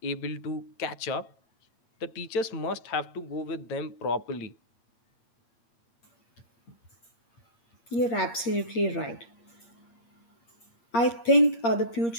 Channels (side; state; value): right; late; 8.6 ms